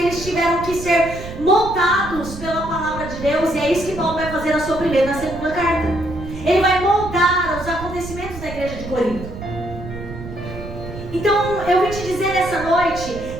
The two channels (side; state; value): right; noise; rumble, 11 dB below the sound